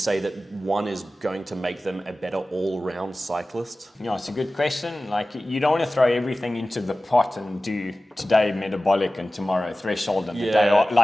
that one is going to make them a better all-round cyclist? Yeah, it's a good question. Like, you don't want to throw everything into the pot and do today metabolic and tomorrow threshold and the day off.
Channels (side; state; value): both; normal; correlation 0.96